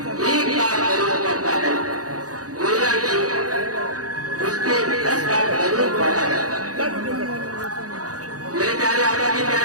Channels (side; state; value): left; late; 0.67 ms